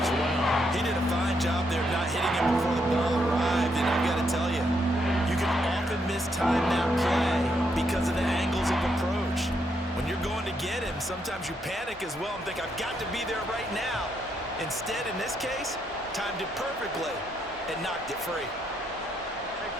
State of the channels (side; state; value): both; normal; correlation 0.77